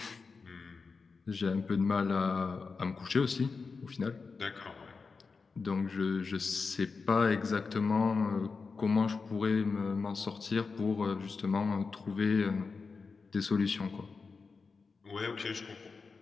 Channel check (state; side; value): quieter; right; 4.7 dB